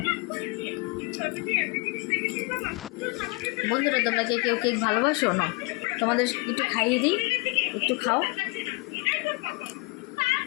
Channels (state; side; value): quieter; right; 26.1 dB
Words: বন্ধুরা তোমরা কে কেউ কেক ভালোবাসো না? তোমাদের একটু খাইয়ে দিই, একটু খাও।